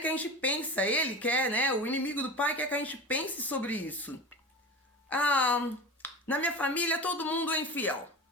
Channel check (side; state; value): both; normal; correlation 0.30